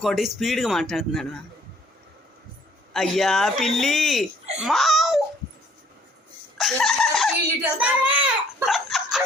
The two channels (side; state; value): both; normal; correlation 0.61